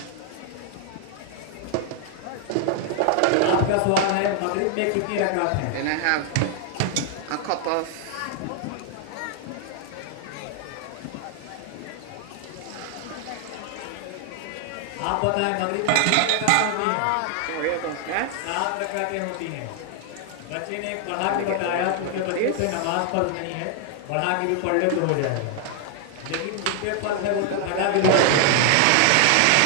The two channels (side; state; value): both; different; correlation 0.00